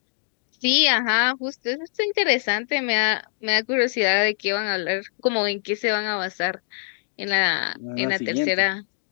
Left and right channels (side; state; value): right; silent; digital silence